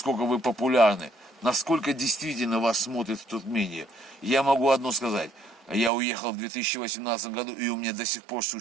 вы популярны, насколько действительно вас смотрят в Туркмении. Я могу одно сказать, я уехал в 2018 году, и у меня до сих пор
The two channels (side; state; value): left; drops out; at 5.9 s